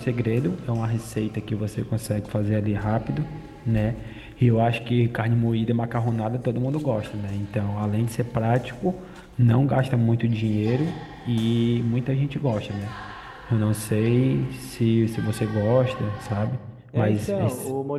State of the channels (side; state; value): both; identical; correlation 1.00